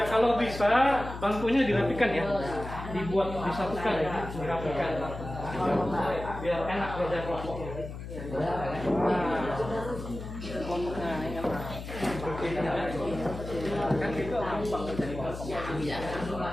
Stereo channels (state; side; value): noise; left; hum, 9 dB below the sound